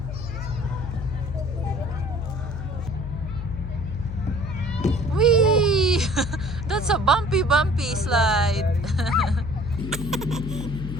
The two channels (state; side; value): noise; left; hum, 7 dB below the sound